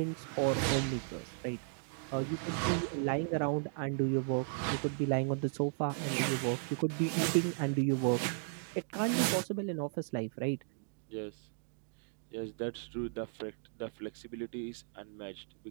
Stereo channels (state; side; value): silent; left; digital silence